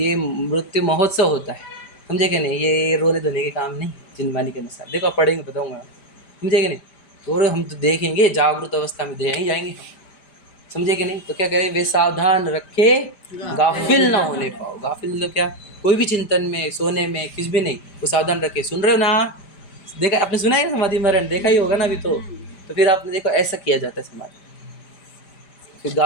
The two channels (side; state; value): right; late; 5.0 ms